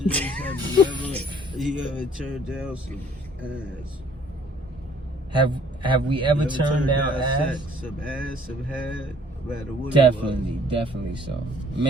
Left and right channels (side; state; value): both; normal; correlation 0.58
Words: is, have you ever turned down some ass? Have we ever You turned down ass? sex, some ass, some head, no matter what Definitely so.